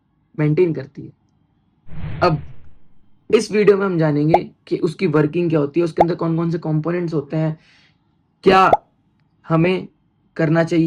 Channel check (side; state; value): both; identical; correlation 1.00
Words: मेंटेन करती है। अब इस वीडियो में हम जानेंगे कि उसकी वर्किंग क्या होती है, उसके अंदर कौन कौन से कंपोनेंट्स होते हैं, क्या हमें करना